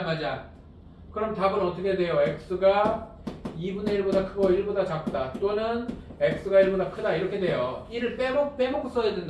그럼 답은 어떻게 돼요? x가 2분의 1보다 크고 1보다 작다. 또는 x가 1보다 크다. 이렇게 돼요. 1을 빼먹고 써야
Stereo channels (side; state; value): both; identical; correlation 1.00